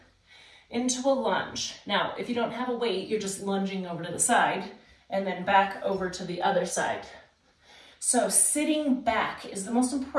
into a lunge. Now, if you don't have a weight, you're just lunging over to the side and then back over to the other side. So sitting back is the most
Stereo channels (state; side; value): identical; both; correlation 1.00